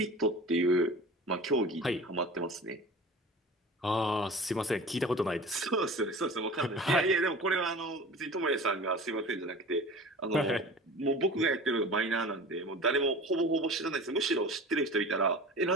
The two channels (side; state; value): both; normal; correlation 0.38